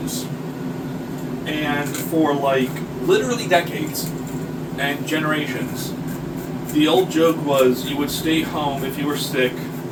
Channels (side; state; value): both; identical; correlation 1.00